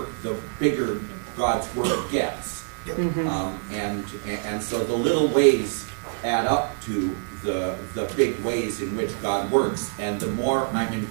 the bigger God's work gets. Yep. And so the little ways add up to the big ways in which God works, and the more I'm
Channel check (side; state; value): left; silent; digital silence